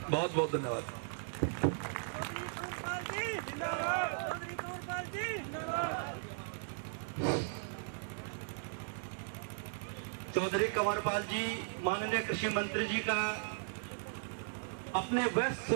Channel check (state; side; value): silent; left; digital silence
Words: बहुत बहुत धन्यवाद। चौधरी कंवरपाल जी, माननीय कृषि मंत्री जी का अपने व्यस्त